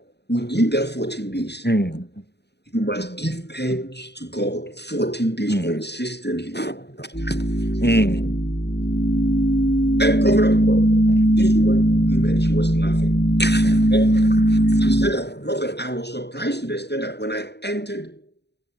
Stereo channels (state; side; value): late; right; 0.49 ms